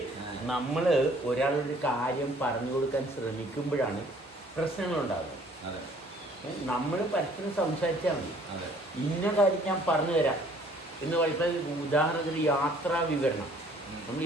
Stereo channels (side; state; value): both; normal; correlation 0.57